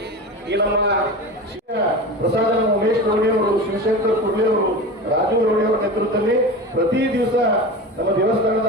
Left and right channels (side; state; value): both; normal; correlation 0.29